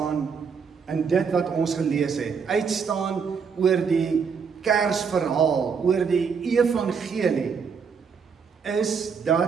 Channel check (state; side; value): quieter; left; 6.1 dB